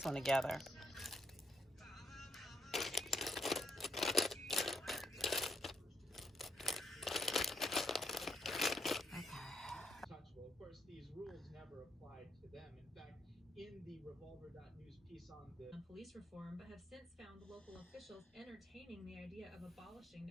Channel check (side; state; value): both; normal; correlation 0.77